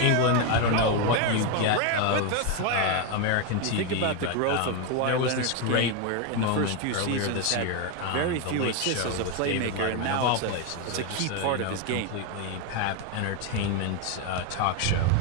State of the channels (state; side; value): different; both; correlation 0.02